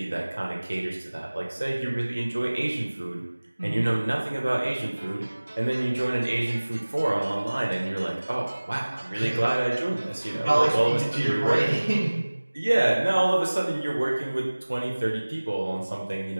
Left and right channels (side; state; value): both; inverted; correlation -1.00